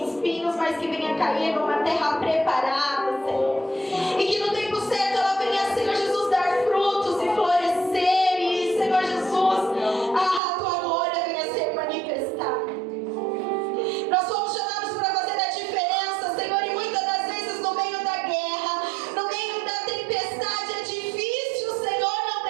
mas que venha cair numa terra preparada, Senhor, e que no tempo certo ela venha, Senhor Jesus, dar frutos e florescer, e, Senhor Jesus, a tua glória venha ser manifestada. Nós somos chamados para fazer a diferença, Senhor, e muitas das vezes no meio da guerra, no meio da tempestade, é difícil, Senhor, não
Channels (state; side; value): drops out; left; at 10.4 s